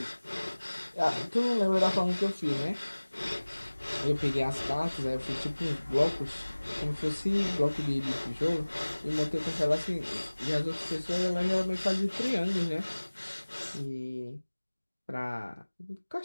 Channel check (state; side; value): inverted; both; correlation -1.00